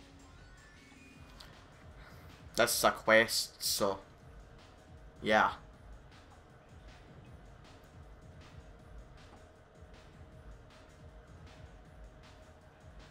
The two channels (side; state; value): both; identical; correlation 1.00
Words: This is a quest, so yeah.